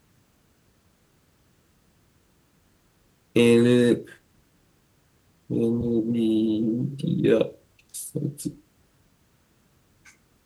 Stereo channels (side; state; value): both; identical; correlation 1.00